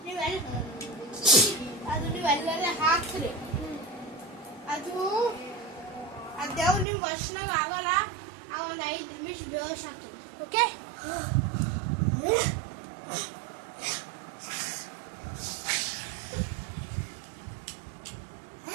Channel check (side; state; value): left; drops out; at 6.9 s